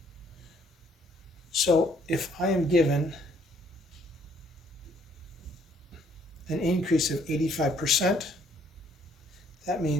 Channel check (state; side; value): normal; both; correlation 0.65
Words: So if I am given an increase of 85%, that